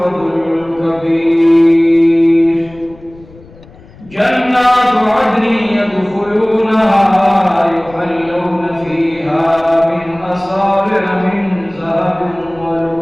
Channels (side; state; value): left; noise; rumble, 23 dB below the sound